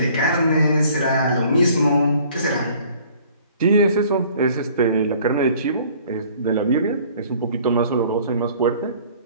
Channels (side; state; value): both; inverted; correlation -0.54